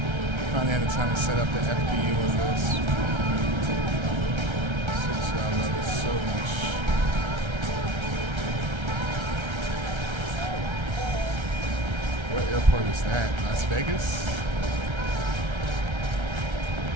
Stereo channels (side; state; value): left; late; 1.3 ms